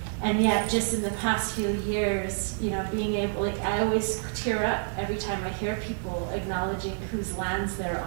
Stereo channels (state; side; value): silent; left; digital silence